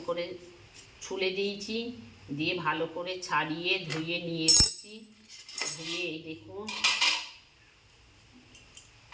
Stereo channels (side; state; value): both; identical; correlation 1.00